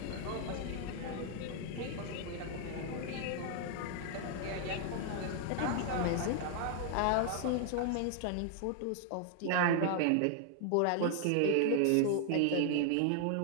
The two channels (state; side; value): different; both; correlation 0.00